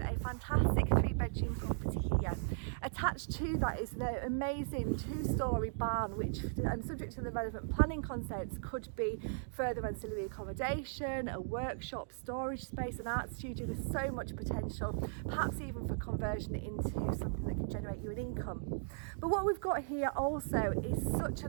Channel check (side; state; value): left; silent; digital silence